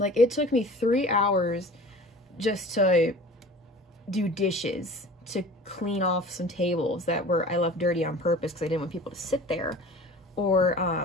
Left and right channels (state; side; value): normal; both; correlation 0.42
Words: it took me 3 hours just to do dishes, to clean off some tables that I left dirty on purpose because I didn't want people to sit there, or